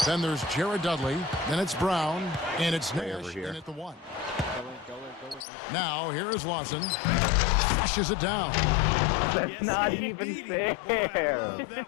Then there's Jared Dudley. Then it's Brown. And it's Nash in at the 1. Now, here is Lawson. Flushes it down. That's not even fair.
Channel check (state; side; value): drops out; right; at 5.5 s